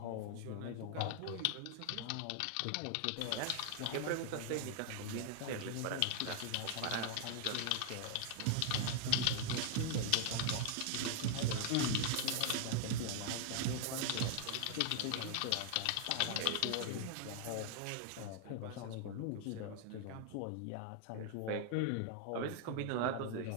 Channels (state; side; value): different; both; correlation 0.00